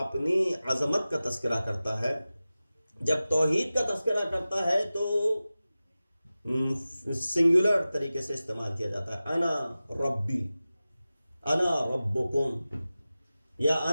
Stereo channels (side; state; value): both; inverted; correlation -0.96